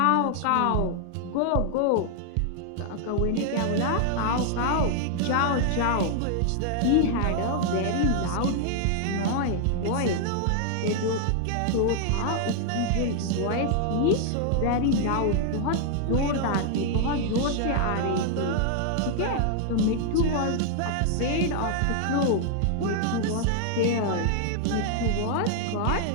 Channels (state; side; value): different; both; correlation 0.00